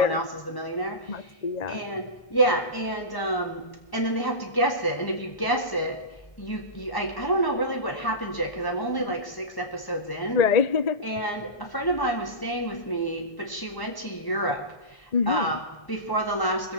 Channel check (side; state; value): right; late; 1.1 ms